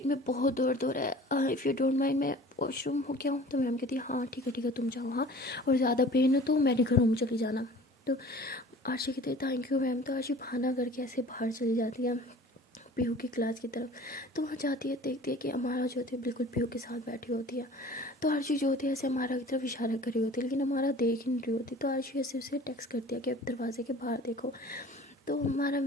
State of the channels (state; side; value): normal; both; correlation 0.45